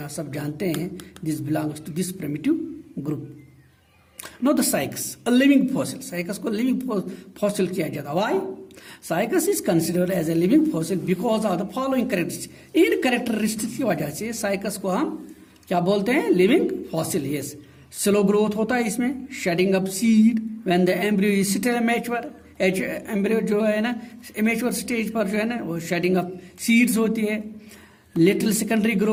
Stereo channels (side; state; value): both; identical; correlation 1.00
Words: आप सब जानते हैं। This belongs to this primitive group. Now the Cycas, a living fossil. Cycas को living fossil किया जाता है। Why? Cycas is considered as a living fossil because of the following characteristics. In characteristics की वजह से Cycas को हम क्या बोलते हैं? Living fossil. Yes. Slow growth होता है इसमें, shedding of seed when the embryo is still immature. Embryo जो है ना इमेच्योर स्टेज पर जो है ना वो शेडिंग ऑफ सीड्स होती है। Little secondary